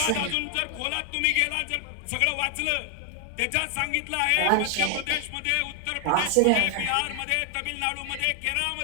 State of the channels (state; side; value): different; both; correlation 0.00